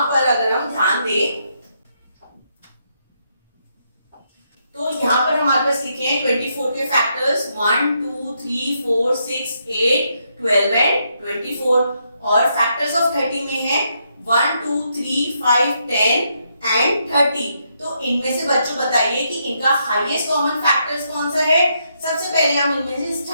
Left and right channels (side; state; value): both; inverted; correlation -0.78